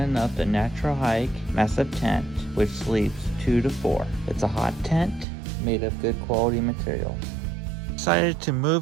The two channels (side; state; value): left; drops out; at 5.2 s